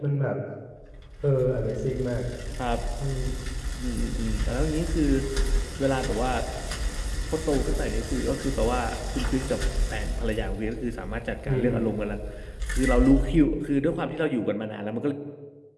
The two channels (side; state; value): both; identical; correlation 1.00